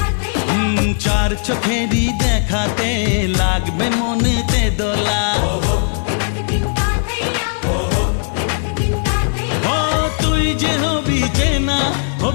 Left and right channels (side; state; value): right; silent; digital silence